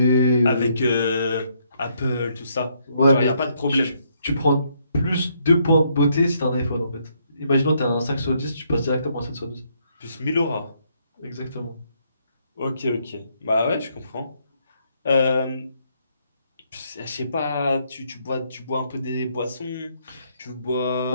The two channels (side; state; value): both; inverted; correlation -0.72